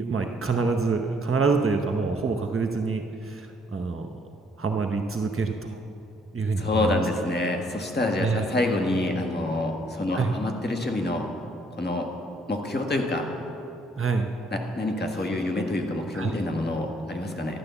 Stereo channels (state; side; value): normal; both; correlation 0.67